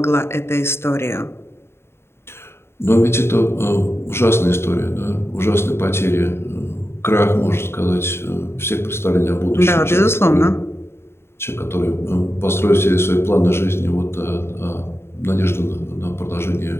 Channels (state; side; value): late; right; 0.12 ms